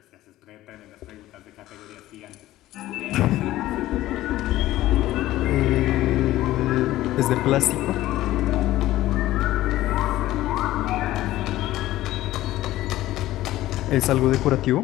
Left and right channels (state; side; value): quieter; right; 15.4 dB